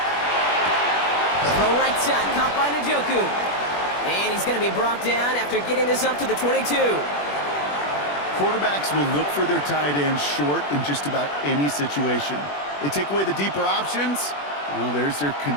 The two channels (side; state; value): right; late; 21 ms